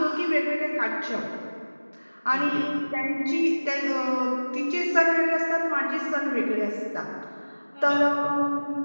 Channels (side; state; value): both; inverted; correlation -1.00